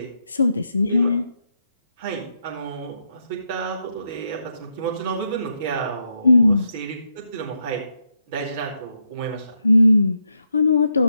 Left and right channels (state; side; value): inverted; both; correlation -0.82